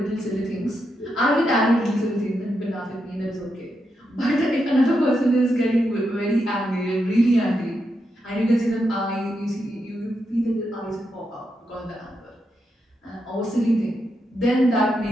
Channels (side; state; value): both; normal; correlation 0.84